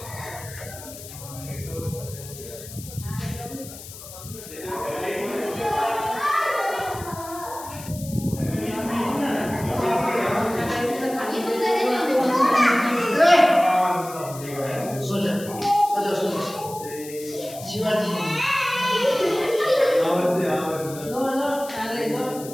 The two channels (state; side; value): noise; left; hiss, 14 dB below the sound